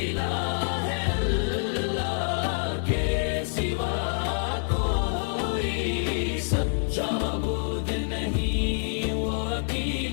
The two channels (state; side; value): silent; right; digital silence